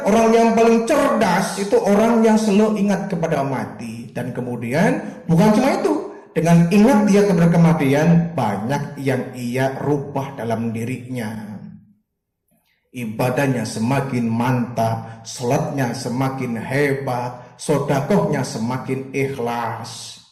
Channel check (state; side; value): identical; both; correlation 1.00